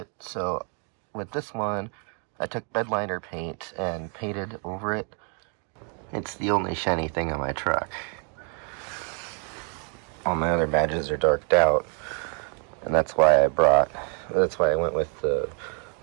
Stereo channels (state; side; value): quieter; left; 39.6 dB